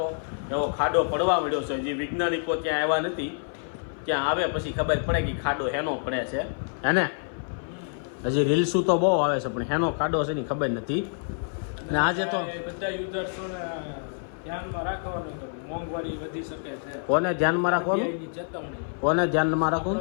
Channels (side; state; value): right; silent; 56 dB below the other